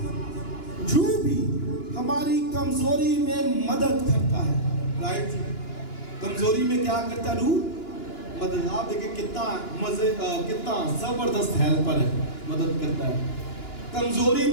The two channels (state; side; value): late; right; 2.9 ms